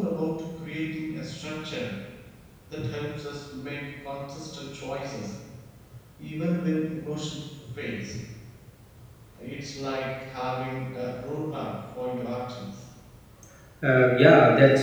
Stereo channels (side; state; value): both; identical; correlation 1.00